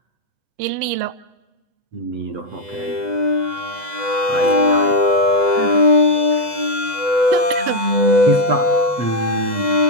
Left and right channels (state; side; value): late; left; 8.0 ms